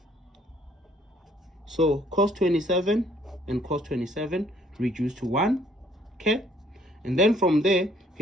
So cos 27 and cos 27 reduce to 1. Okay, and then from there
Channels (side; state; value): both; normal; correlation 0.62